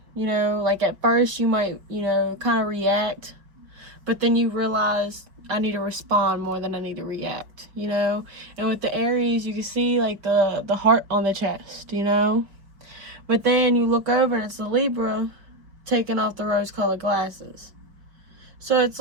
You know, like at first you might, you know, kind of react, but then you realize I need to respond more than I need to react, you know? And with the Aries, you can see like the heart on the chest, you know? But then you look over and it's the Libra taking off the rose-colored glasses. So it's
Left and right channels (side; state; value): left; late; 4.8 ms